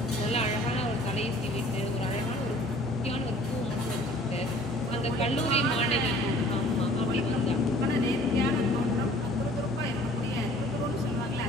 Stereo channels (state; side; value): normal; both; correlation 0.51